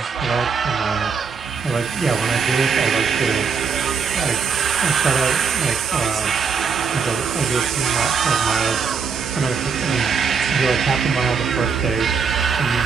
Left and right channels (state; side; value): quieter; left; 5.8 dB